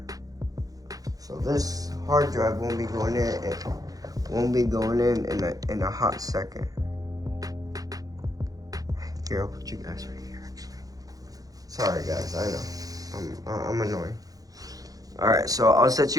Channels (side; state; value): left; late; 0.17 ms